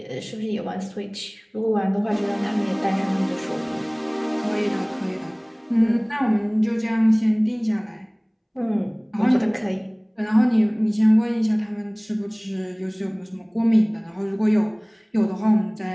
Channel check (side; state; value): both; identical; correlation 1.00